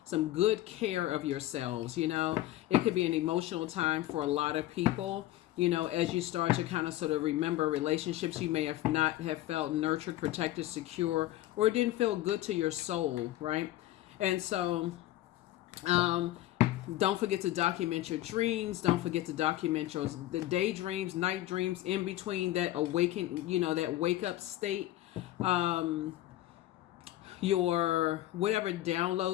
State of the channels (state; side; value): quieter; right; 15.2 dB